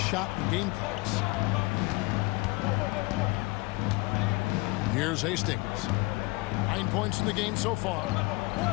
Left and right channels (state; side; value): quieter; right; 24.4 dB